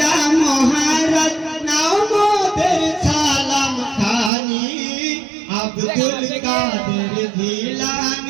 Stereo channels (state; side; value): drops out; left; at 4.3 s